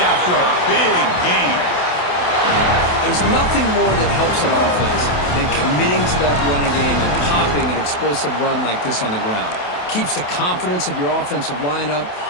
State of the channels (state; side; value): late; right; 28 ms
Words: after a big gain. There's nothing more that helps an offense than committing to that running game and popping an explosive run like this on the ground. Keeps the confidence of your offensive lineup.